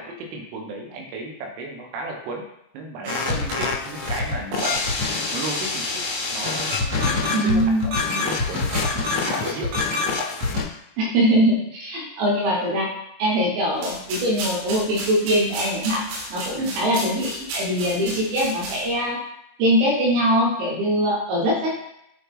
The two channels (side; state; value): left; late; 22 ms